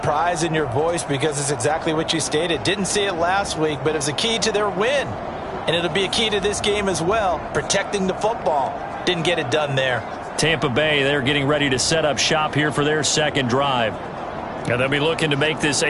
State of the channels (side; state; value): both; identical; correlation 1.00